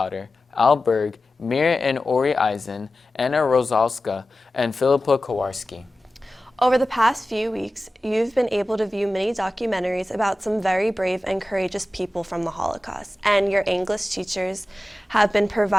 Al Berg, Mir and Ori Eisen, Anna Rosalska, and Philippa Kowarski. Over the past few weeks, you've been able to view many documentaries about some very brave and courageous people from the Holocaust, and your English teachers have been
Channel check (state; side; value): normal; both; correlation 0.95